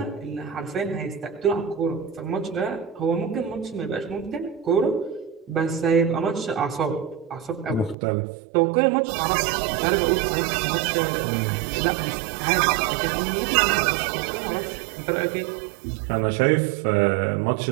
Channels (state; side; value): drops out; left; at 8.0 s